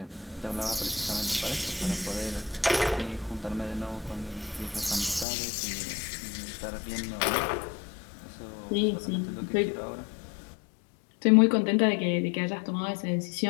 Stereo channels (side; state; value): right; drops out; at 5.2 s